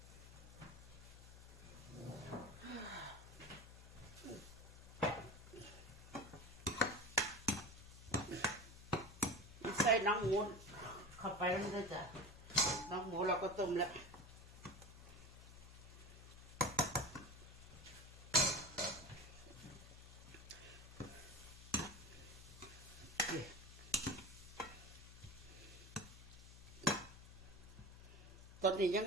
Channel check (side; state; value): left; noise; hum, 16 dB below the sound